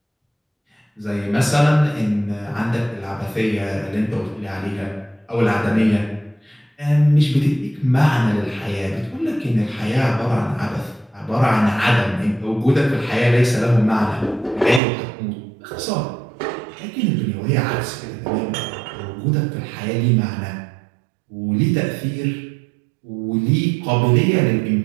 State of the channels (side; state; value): left; drops out; at 14.8 s